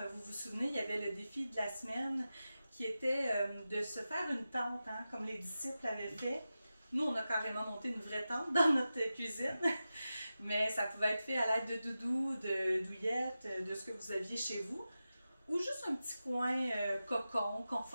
vous vous souvenez, il y avait le défi de la semaine qui était de se faire une tente, hein, comme les disciples avaient fait. Nous, on a carrément monté une vraie tente dans notre cuisine, mais ça pouvait être fait à l'aide de doudou, de douillettes, de ce que vous aviez chez vous, ou juste un petit coin cocon,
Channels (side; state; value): both; inverted; correlation -0.93